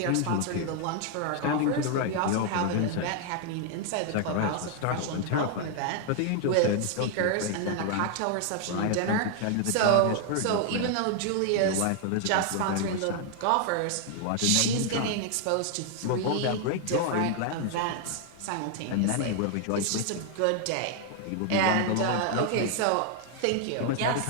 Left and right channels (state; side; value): different; both; correlation 0.00